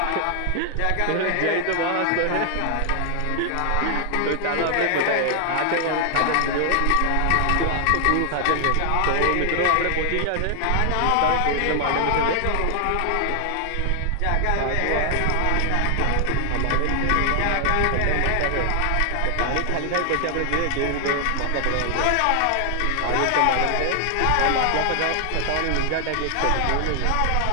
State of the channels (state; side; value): different; both; correlation 0.00